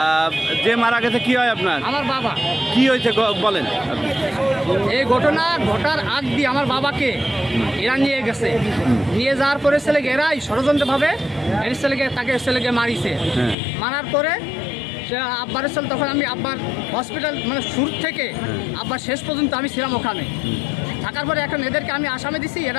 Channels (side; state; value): right; drops out; at 13.6 s